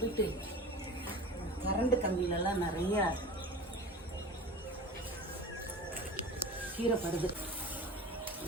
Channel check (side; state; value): both; normal; correlation 0.36